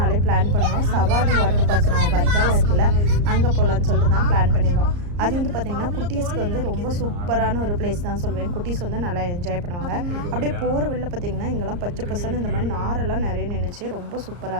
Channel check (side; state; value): left; late; 34 ms